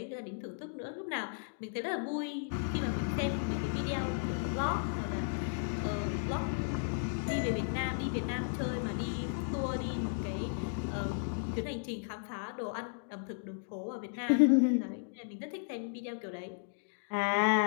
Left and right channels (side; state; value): right; silent; digital silence